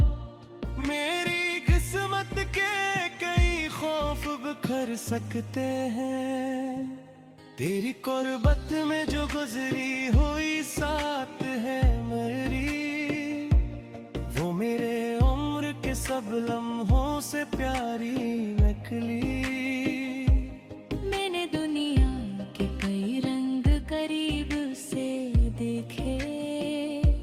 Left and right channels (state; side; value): identical; both; correlation 1.00